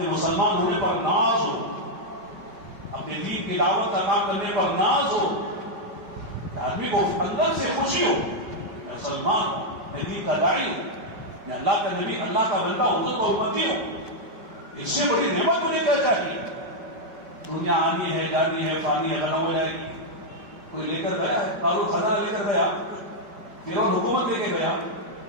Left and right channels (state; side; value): late; left; 5.2 ms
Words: مسلمان ہونے پر ناز ہو، اپنے دین کی دعوت کا کام کرنے پر ناز ہو، آدمی کو اندر سے خوشی ہو، میں مسلمان ہوں، میں دین کا داعی ہوں، میں اللہ کا نبی، اللہ کا بندہ حضور کا امتی ہوں. اس سے بڑی نعمت مجھے کیا چاہیے؟ دنیا آنی ہے، جانی ہے، فانی ہے، ختم ہو جائے گی. کوئی لے کر گیا ہے، قارون خزانہ لے کر گیا، فرعون حکومت لے کے گیا،